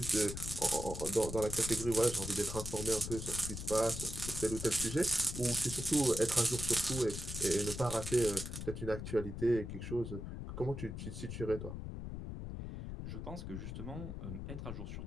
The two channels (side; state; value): left; noise; rumble, 6 dB below the sound